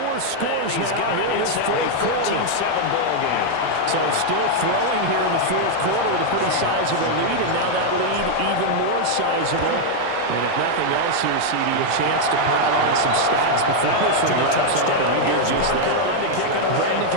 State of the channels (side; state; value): both; different; correlation 0.00